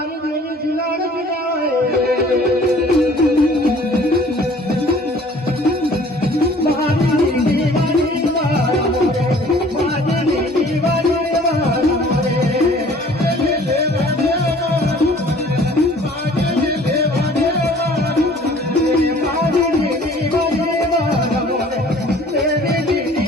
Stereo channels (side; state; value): both; normal; correlation 0.52